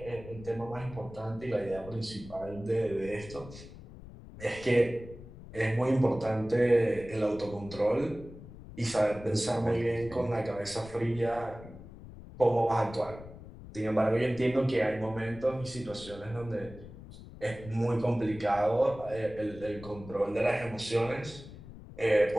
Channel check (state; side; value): noise; left; rumble, 16 dB below the sound